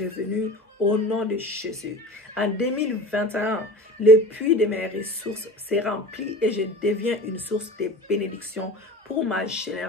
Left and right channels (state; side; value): normal; both; correlation 0.36